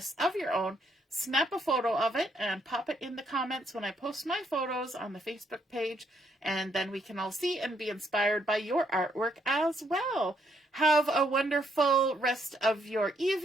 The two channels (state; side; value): normal; both; correlation 0.72